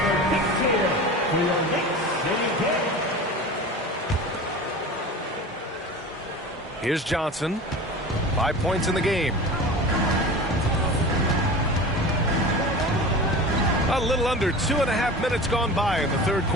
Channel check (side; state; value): both; normal; correlation 0.34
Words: big cheer for your Knicks City Kids. Here's Johnson. 5 points in the game. A little under 2.5 minutes gone by in the third